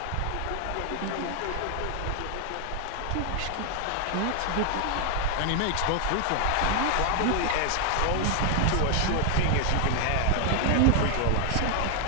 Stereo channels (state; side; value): different; both; correlation 0.00